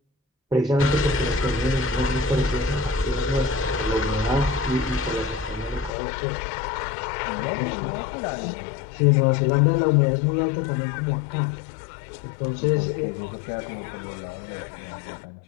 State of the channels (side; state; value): right; drops out; at 5.9 s